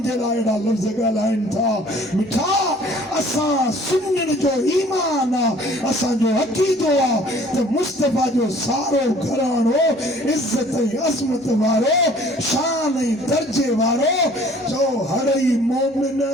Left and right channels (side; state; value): both; normal; correlation 0.53